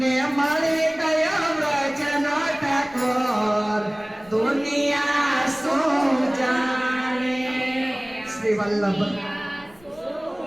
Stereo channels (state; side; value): noise; left; rumble, 28 dB below the sound